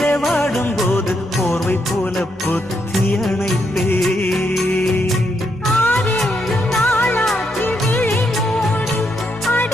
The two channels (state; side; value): normal; both; correlation 0.79